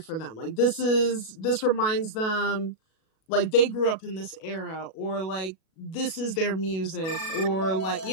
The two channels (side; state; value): right; late; 37 ms